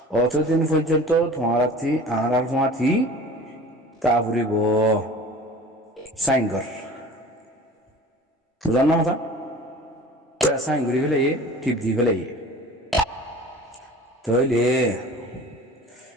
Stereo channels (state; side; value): normal; both; correlation 0.42